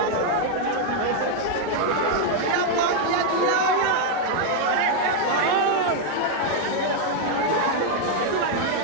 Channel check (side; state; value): both; different; correlation 0.00